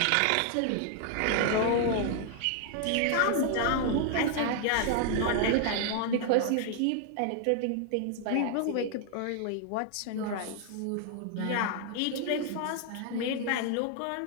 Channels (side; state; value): both; different; correlation 0.00